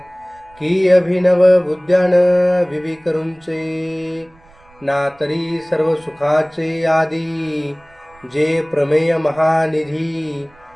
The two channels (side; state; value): right; noise; rumble, 30 dB below the sound